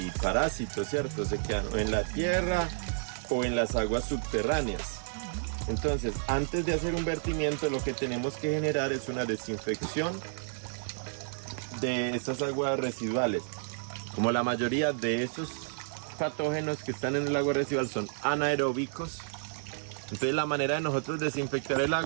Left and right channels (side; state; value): left; silent; digital silence